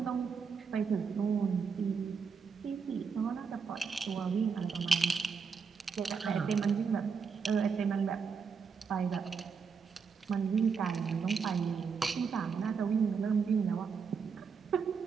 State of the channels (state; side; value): quieter; left; 5.7 dB